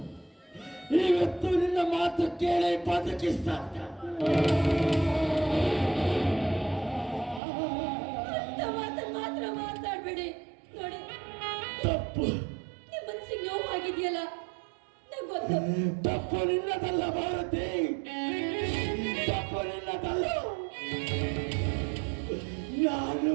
ನಿನ್ನ ಮಾತು ಕೇಳಿ ಬದುಕಿಸ್ತಾ ಮಾತ್ರ ಮಾತಾಡ್ಬೇಡಿ. ನೋಡಿ, ತಪ್ಪು ನಿಮ್ಮ ಮನಸ್ಸಿಗೆ ನೋವಾಗಿದೆಯಲ್ಲ, ನಂಗೆ ಗೊತ್ತು. ತಪ್ಪು ನಿನ್ನದಲ್ಲ ಭಾರತಿ, ತಪ್ಪು ನಿನ್ನದಲ್ಲ.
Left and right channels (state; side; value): drops out; left; at 7.4 s